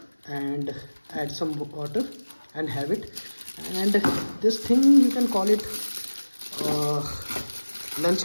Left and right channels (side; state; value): both; inverted; correlation -1.00